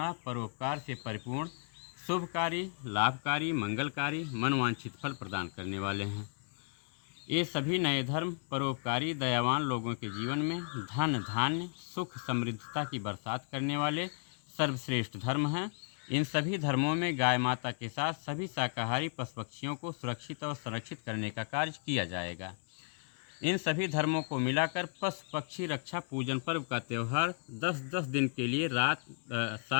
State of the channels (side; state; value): right; silent; 55 dB below the other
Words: परोपकार से परिपूर्ण, शुभकारी, लाभकारी, मंगलकारी, मनवांछित फल प्रदान करने वाले हैं। ये सभी नए धर्म परोपकारी, दयावान लोगों के जीवन में धन, धान्य, सुख, समृद्धता की बरसात करने वाले सर्वश्रेष्ठ धर्म हैं। इन सभी धर्मों में गाय माता के साथ सभी शाकाहारी पशु पक्षियों को सुरक्षित और संरक्षित करने का कार्य किया जाएगा। इन सभी धर्मों को मिलाकर पशु पक्षी रक्षा पूजन पर्व का त्यौहार 10-10 दिन के लिए